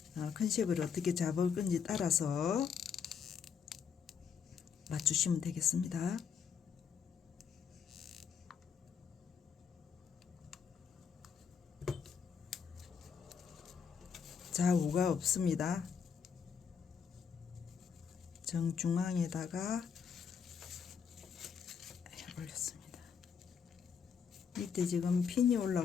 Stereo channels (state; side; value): quieter; right; 6.8 dB